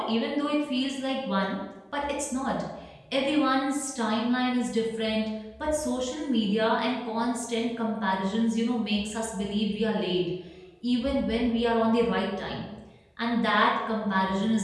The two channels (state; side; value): identical; both; correlation 1.00